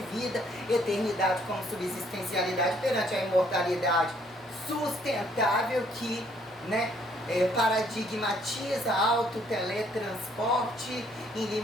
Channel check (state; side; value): normal; both; correlation 0.65